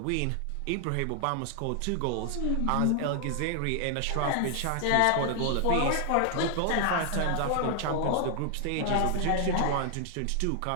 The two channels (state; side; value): different; both; correlation 0.00